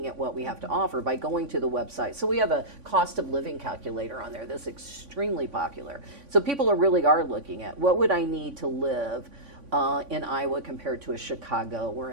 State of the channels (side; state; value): left; late; 3.5 ms